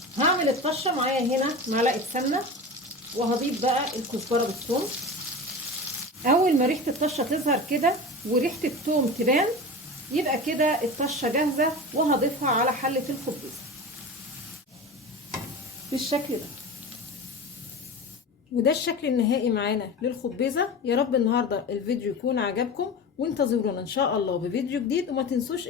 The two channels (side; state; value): both; normal; correlation 0.30